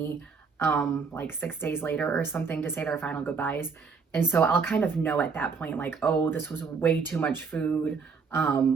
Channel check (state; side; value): quieter; left; 5.3 dB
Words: like 6 days later or something to say their final goodbyes. And so I'll kind of know at that point, like, oh, this was way too much food.